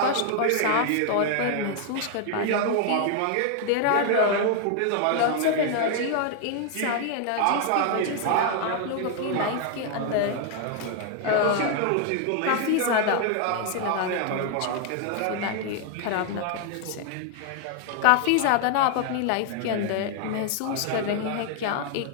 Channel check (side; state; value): both; different; correlation 0.00